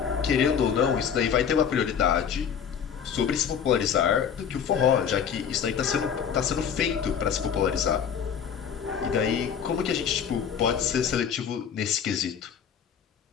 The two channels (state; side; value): quieter; right; 7.7 dB